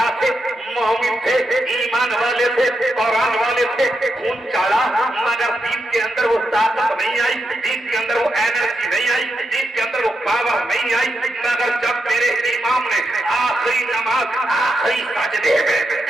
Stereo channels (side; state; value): both; normal; correlation 0.85